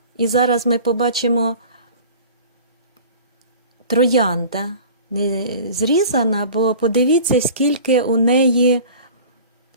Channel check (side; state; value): both; inverted; correlation -0.42